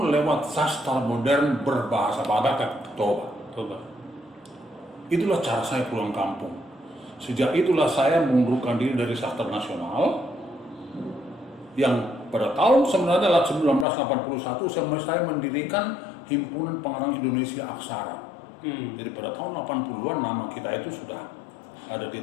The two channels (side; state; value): right; drops out; at 13.9 s